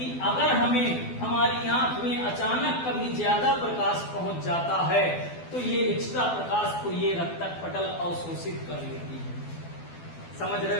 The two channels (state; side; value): late; right; 12 ms